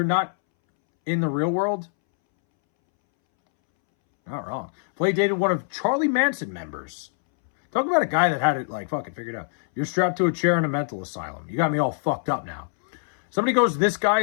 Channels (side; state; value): right; silent; 62 dB below the other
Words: not in the real world? Not wrong. Flay dated one of Charlie Manson members. Talk about a guy that had it, like, fucking figured out. You're strapped to a chair in a mental asylum. You got me all fucked up now. Somebody goes, this guy